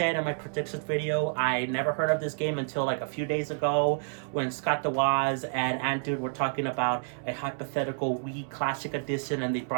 in my predictions video, I never heard of this game until like a few days ago when Scott DeWaz and Antude were talking about a hypothetical Wii Classic Edition, and they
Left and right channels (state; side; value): silent; left; 58 dB below the other